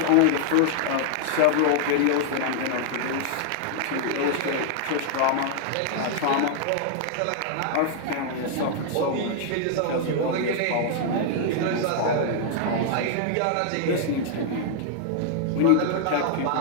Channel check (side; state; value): both; different; correlation -0.01